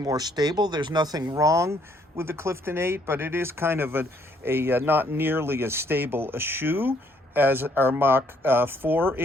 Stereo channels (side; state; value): both; normal; correlation 0.67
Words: stable. There's nothing wrong with the Clifton 8, but it is kind of a not nearly as stable a shoe as our Mach 4